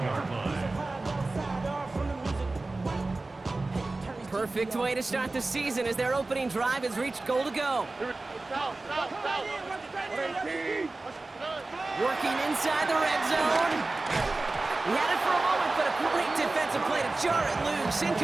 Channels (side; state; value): left; quieter; 3.2 dB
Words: line. Perfect way to start the season as their opening drive has reached goal to go. Working inside the red zone. He had it for a moment, but a great defensive play to jar it loose.